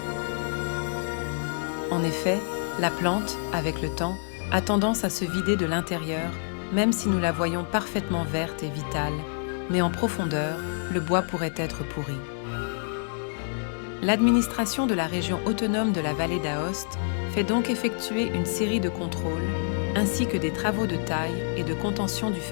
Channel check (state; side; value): silent; right; 60 dB below the other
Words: En effet, la plante, avec le temps, a tendance à se vider de l'intérieur, même si nous la voyons parfaitement verte et vitale, mais en profondeur, le bois pourrait être pourri. L'administration de la région autonome de la vallée d'Aoste fait donc effectuer une série de contrôles, ainsi que des travaux de taille et de contention du